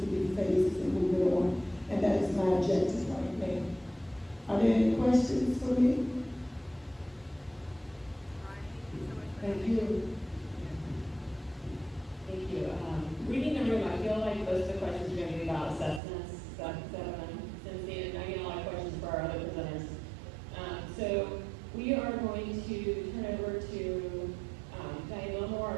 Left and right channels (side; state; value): left; drops out; at 16.0 s